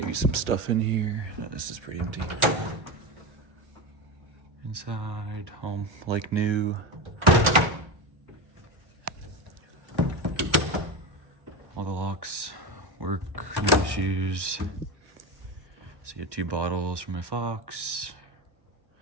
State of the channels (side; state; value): left; late; 1.3 ms